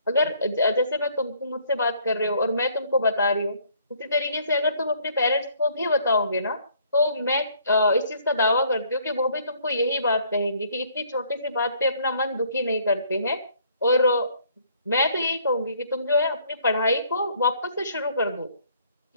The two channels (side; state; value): both; inverted; correlation -0.62